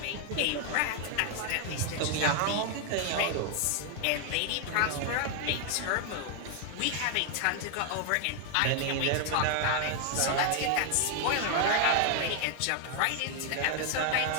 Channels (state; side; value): different; both; correlation 0.00